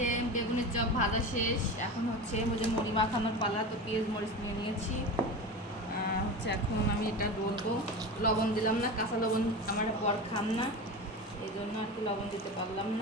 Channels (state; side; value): normal; both; correlation 0.27